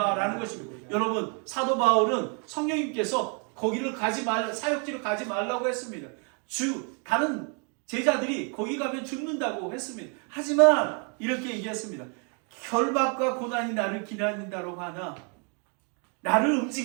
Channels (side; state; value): left; quieter; 37.4 dB